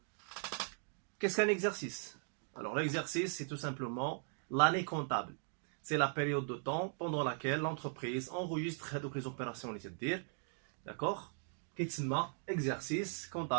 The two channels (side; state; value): left; silent; 52 dB below the other